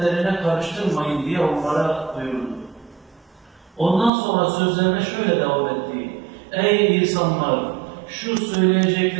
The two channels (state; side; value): drops out; left; at 4.1 s